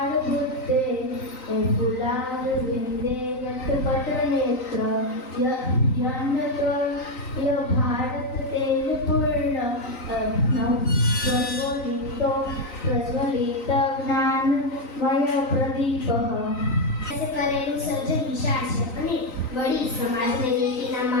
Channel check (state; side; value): late; right; 3.9 ms